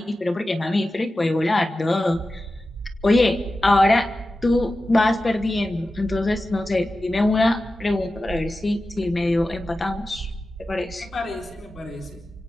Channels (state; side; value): normal; both; correlation 0.93